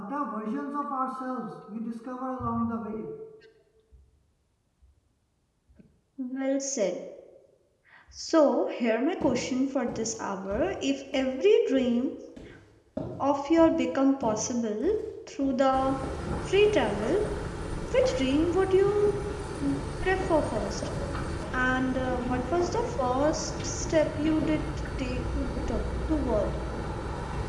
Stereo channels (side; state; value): both; identical; correlation 1.00